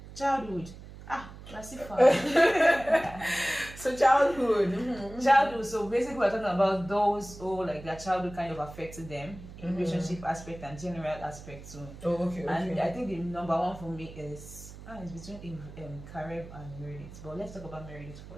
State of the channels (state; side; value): noise; right; hum, 15 dB below the sound